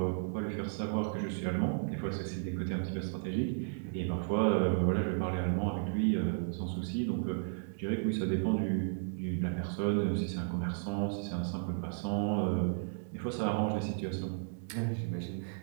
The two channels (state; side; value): silent; left; digital silence